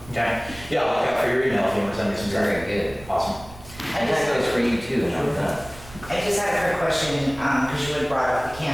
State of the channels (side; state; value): right; noise; rumble, 18 dB below the sound